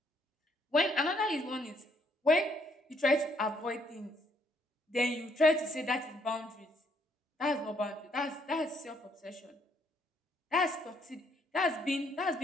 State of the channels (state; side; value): normal; both; correlation 0.70